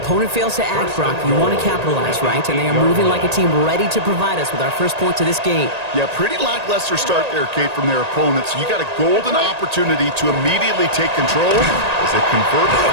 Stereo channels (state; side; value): late; left; 1.8 ms